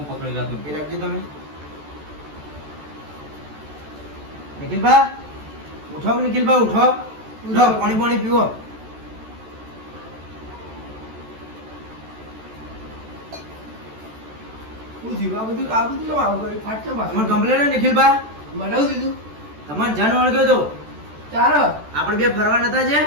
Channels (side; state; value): left; late; 14 ms